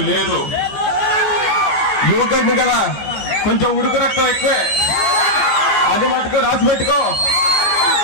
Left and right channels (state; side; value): late; right; 14 ms